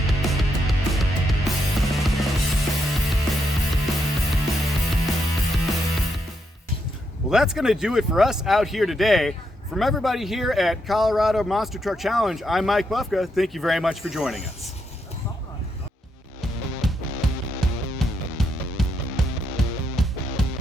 Well, that's going to do it for us out here today. From everybody here at Colorado Monster Truck Challenge, I'm Mike Bufka. Thank you very much for joining us.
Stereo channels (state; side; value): normal; both; correlation 0.80